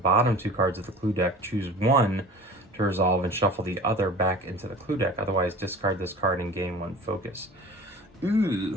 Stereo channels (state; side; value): normal; both; correlation 0.39